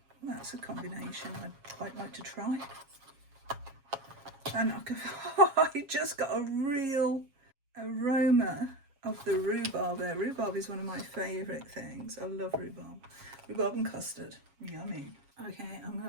Well, that's a combination I'd quite like to try. And I just got a real aroma of the rhubarb there. Rhubarb is one of my favourite things. I love rhubarb. Rhubarb and custard. Yummy. Okay, I'm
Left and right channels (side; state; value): left; late; 7.3 ms